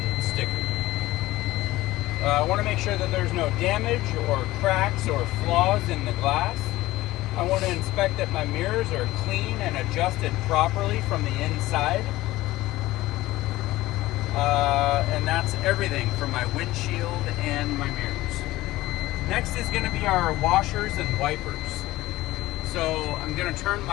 sticker. I want to make sure that there's no damage or cracks or flaws in the glass. I want to inspect that my mirrors are clean and adjusted properly from the inside. And that's everything for my windshield and my mirrors. Next is going to be our washers and wipers. So I'm going to turn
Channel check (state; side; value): quieter; right; 17.5 dB